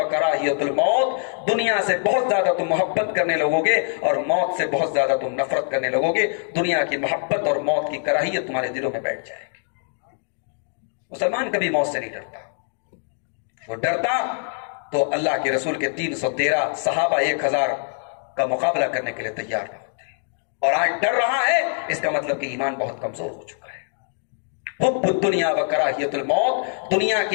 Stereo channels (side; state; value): right; silent; digital silence